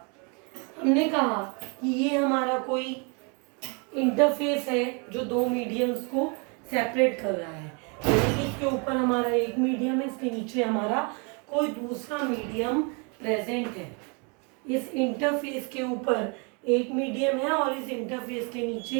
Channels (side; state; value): left; quieter; 33.9 dB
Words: हमने कहा कि ये हमारा कोई इंटरफेस है जो दो मीडियम्स को सेपरेट कर रहा है। इसके ऊपर हमारा एक मीडियम है, इसके नीचे हमारा कोई दूसरा मीडियम प्रेजेंट है। इस इंटरफेस के ऊपर एक मीडियम है और इस इंटरफेस के